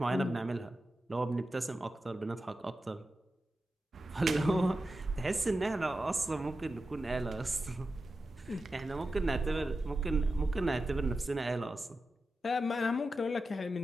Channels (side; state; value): both; normal; correlation 0.91